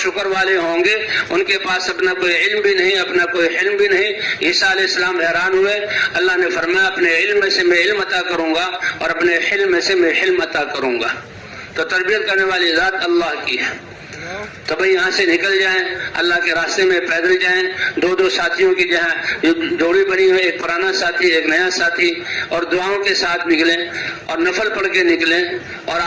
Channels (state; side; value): identical; both; correlation 1.00